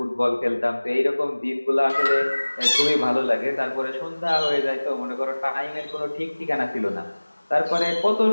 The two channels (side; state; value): both; inverted; correlation -1.00